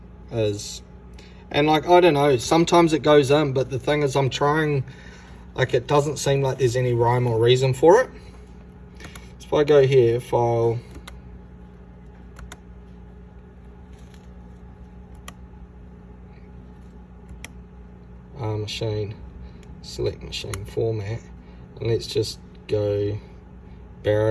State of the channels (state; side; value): identical; both; correlation 1.00